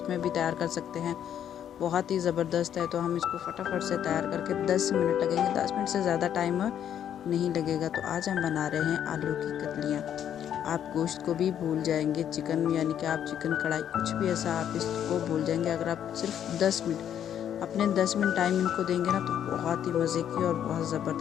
में भी तैयार कर सकते हैं। बहुत ही ज़बरदस्त है। तो हम इसको फटाफट से तैयार करके 10 मिनट लगेंगे, 10 मिनट से ज़्यादा टाइम नहीं लगेगा। तो आज हम बना रहे हैं आलू की कतलियाँ। आप गोश्त को भी भूल जाएंगे, चिकन यानी कि आप चिकन कढ़ाई कुछ भी ऐसा आप इसको भूल जाएंगे। अगर आप सिर्फ 10 मिनट अपने 10 मिनट टाइम इनको देंगे ना, तो बहुत ही मज़े की और बहुत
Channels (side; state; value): right; quieter; 9.7 dB